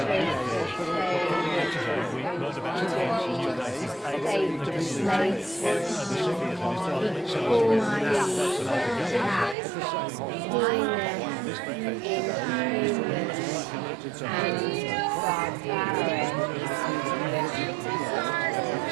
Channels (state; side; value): drops out; left; at 9.6 s